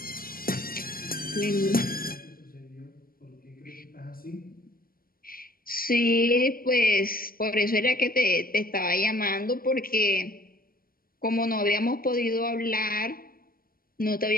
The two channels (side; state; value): right; late; 0.42 ms